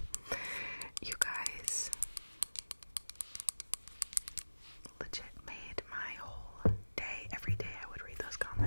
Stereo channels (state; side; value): inverted; both; correlation -1.00